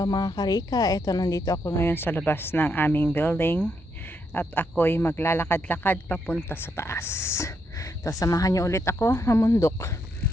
mga karika, eto nandito ako ngayon sa labas ng aming building at ako'y maglalakad-lakad papunta sa taas. So, samahan niyo ulit ako mamundok.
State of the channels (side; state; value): both; normal; correlation 0.78